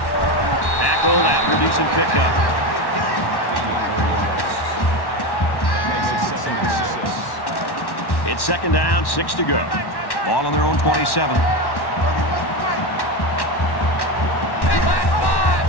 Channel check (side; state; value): right; late; 1.1 ms